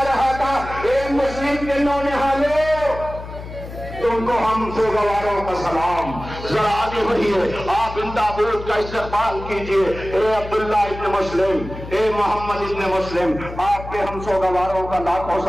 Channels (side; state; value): left; noise; hum, 12 dB below the sound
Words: رہا تھا۔ اے مسلم کے نونہالوں، تم کو ہم سوگواروں کا سلام، ذرا آگے بڑھیے، آپ ان تابوت کا استقبال کیجئے۔ اے عبداللہ ابن مسلم، اے محمد ابن مسلم، آپ کے ہم سوگواروں کا لاکھوں